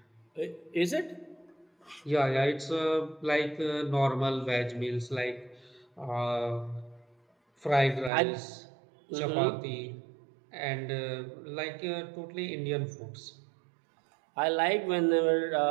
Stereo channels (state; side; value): drops out; left; at 8.1 s